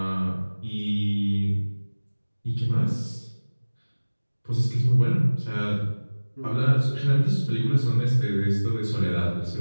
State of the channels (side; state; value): both; inverted; correlation -1.00